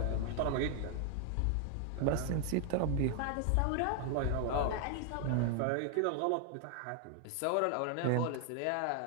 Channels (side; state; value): both; different; correlation 0.00